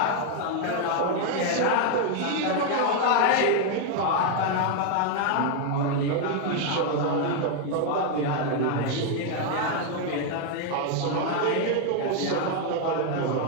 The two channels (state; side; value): different; both; correlation 0.00